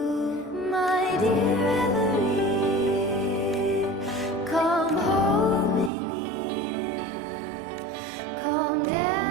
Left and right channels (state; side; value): drops out; left; at 5.9 s